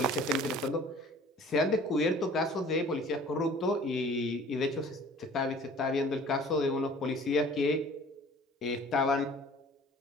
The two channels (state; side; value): normal; both; correlation 0.49